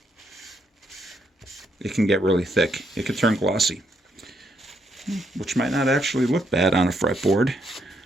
it can get really thick. It can turn glossy, which might not actually look bad on a fretboard.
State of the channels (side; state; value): both; normal; correlation 0.75